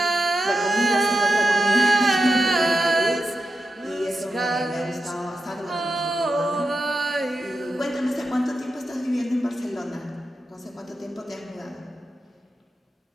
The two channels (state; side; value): normal; both; correlation 0.88